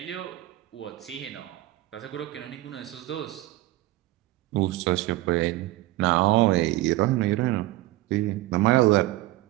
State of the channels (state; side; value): quieter; left; 17.4 dB